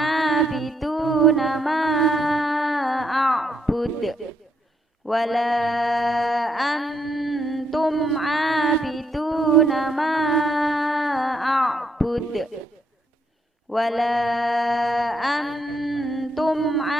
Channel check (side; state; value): both; normal; correlation 0.75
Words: ma a'bud. Wala antum 'abiduna ma a'bud. Wala antum